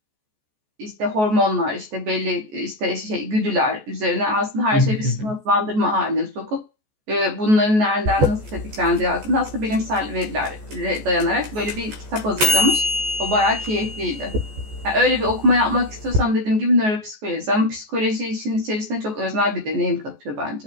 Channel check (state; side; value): late; left; 14 ms